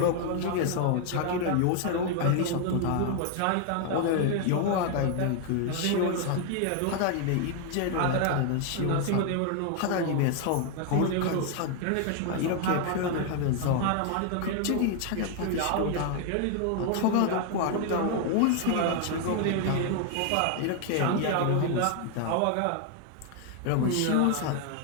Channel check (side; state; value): both; different; correlation 0.00